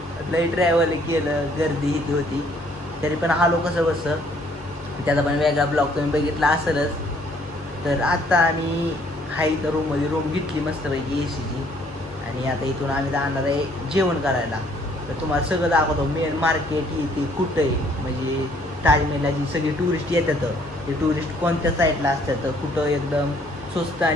लई ट्रॅव्हल केलं, गर्दी इथे होती तरी पण आलो कसं बसं. त्याचा पण वेगळा ब्लॉग तुम्ही बघितला असेलच. तर आता आम्ही हाय तर रूम घेतली मस्तपैकी एसीची आणि आता इथून आम्ही जाणार आहे जेवण करायला. तर तुम्हाला सगळं दाखवतो. मेन मार्केट इथे कुठं आहे, म्हणजे ताजमहलला जी सगळी टुरिस्ट येतात ते टुरिस्ट कोणत्या साईडला असतात, कुठं एकदम स्वस्त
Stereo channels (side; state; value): both; normal; correlation 0.63